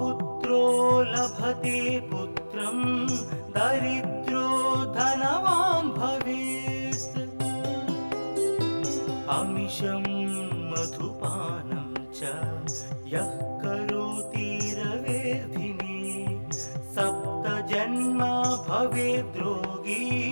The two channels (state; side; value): inverted; both; correlation -1.00